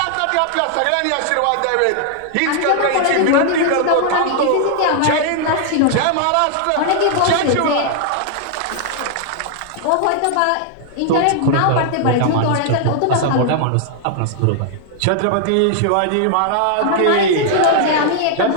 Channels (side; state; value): both; different; correlation 0.00